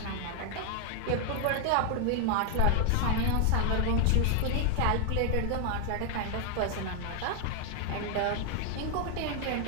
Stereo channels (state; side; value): different; both; correlation 0.00